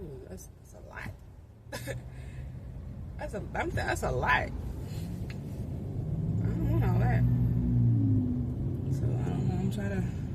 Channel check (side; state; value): both; identical; correlation 1.00